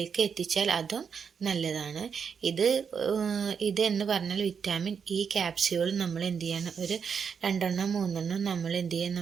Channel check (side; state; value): left; quieter; 6.6 dB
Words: എത്തിച്ചാൽ അതും നല്ലതാണ്. ഇത് എന്ന് പറഞ്ഞാൽ വിറ്റാമിൻ ഇ ക്യാപ്സ്യൂൾ നമ്മൾ എന്ത് ചെയ്യണം, ഒരു 2-3 നമ്മൾ എന്ത് ചെയ്യാൻ